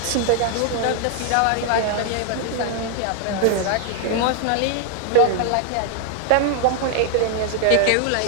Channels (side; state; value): both; different; correlation 0.00